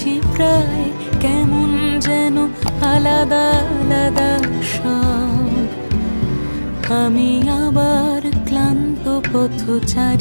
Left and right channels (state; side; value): inverted; both; correlation -1.00